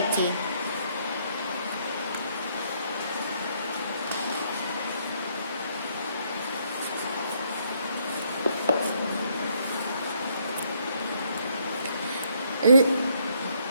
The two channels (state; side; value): inverted; both; correlation -0.70